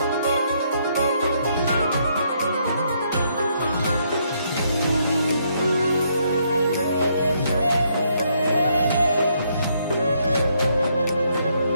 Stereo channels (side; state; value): both; inverted; correlation -0.73